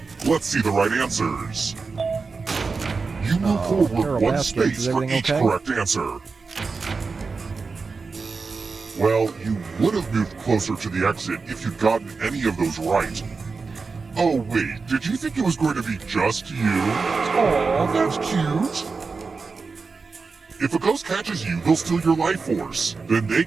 Let's see the right answers. You move Carol forward one Baskins, space is for everything each okay? correct answer. Well, you would have moved closer to the exit if you'd gotten any of those right. Oh wait, did you think it was going to be just you? Aw, that's cute. If a ghost catches you, they'll steal your life force. Then they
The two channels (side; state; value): left; quieter; 4.5 dB